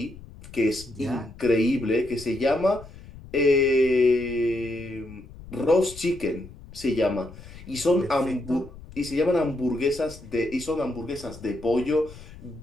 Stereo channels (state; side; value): noise; left; rumble, 17 dB below the sound